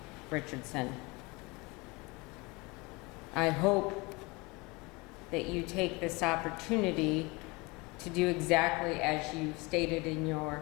Richardson. I hope that you take this opportunity to do exactly as you stated in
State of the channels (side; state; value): right; quieter; 25.5 dB